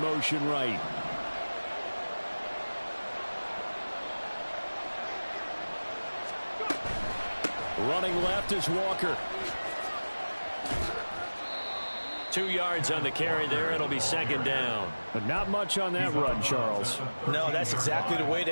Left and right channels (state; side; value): inverted; both; correlation -1.00